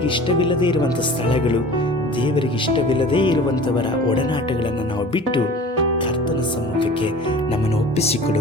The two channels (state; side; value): normal; both; correlation 0.41